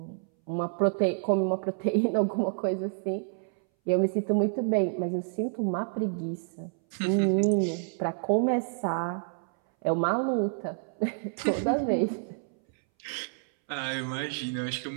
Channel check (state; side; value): silent; left; 59 dB below the other